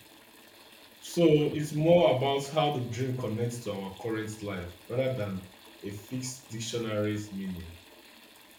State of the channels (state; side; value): identical; both; correlation 1.00